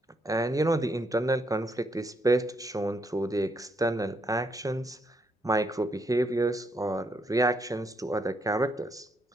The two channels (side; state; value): both; normal; correlation 0.75